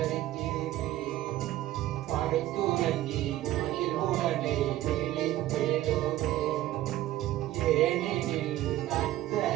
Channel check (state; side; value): quieter; left; 14.5 dB